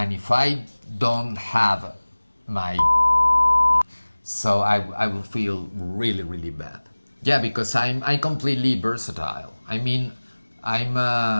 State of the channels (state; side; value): inverted; both; correlation -1.00